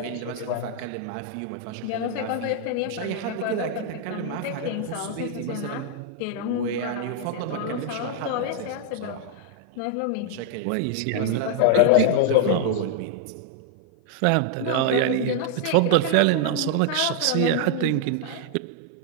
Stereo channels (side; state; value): both; different; correlation 0.00